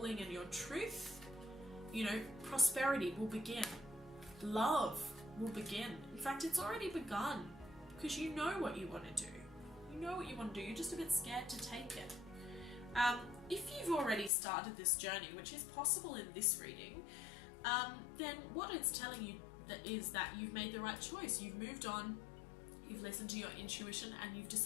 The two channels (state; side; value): drops out; right; at 14.3 s